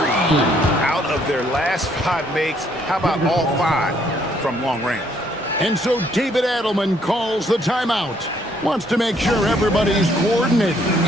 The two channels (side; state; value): both; normal; correlation 0.67